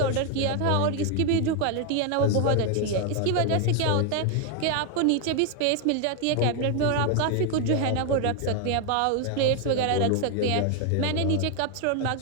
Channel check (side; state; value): both; different; correlation 0.00